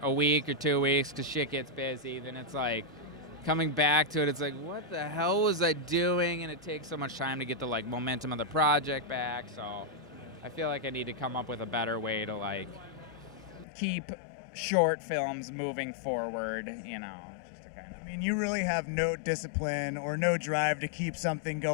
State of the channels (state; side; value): drops out; right; at 13.7 s